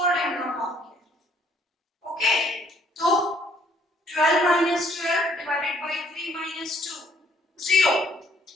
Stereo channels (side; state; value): both; normal; correlation 0.64